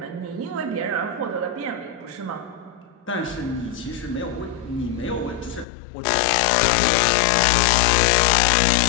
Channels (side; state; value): right; drops out; at 5.7 s